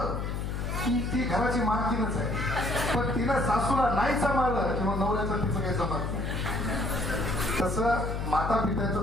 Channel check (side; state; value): left; noise; hum, 3 dB below the sound